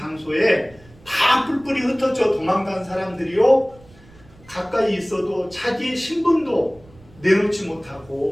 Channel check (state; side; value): noise; right; rumble, 25 dB below the sound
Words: 다 뿔뿔이 흩어져 도망간 사람들이요, 가까이 있어도 자기의 신분도 내놓지